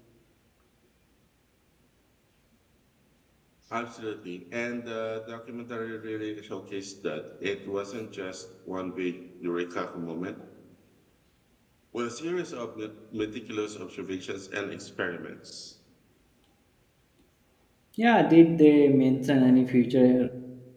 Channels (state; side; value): identical; both; correlation 1.00